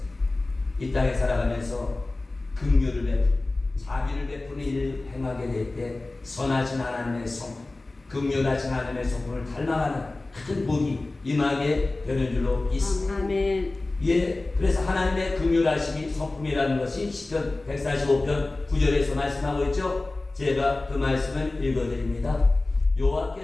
이 땅에 살아가면서 긍휼을 베푸고 자비를 베푸는 일을 행하게 될 때 선하신 하나님의 성품, 긍휼하신 하나님의 성품을 닮아가는 큰 복이 임하게 되는 줄로 믿습니다. 아멘. 예, 그래서 하나님의 긍휼하심이 성품이라는 것이 시편 145편 9절에서 말씀하고 있죠. 제가 그 말씀을 읽어드립니다.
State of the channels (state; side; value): quieter; right; 3.1 dB